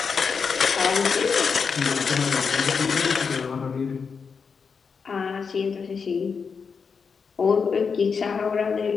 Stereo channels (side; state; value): right; quieter; 5.7 dB